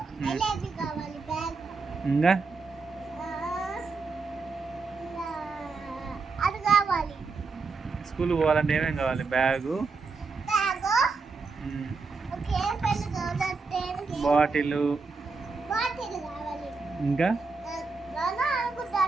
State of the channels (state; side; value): quieter; left; 4.3 dB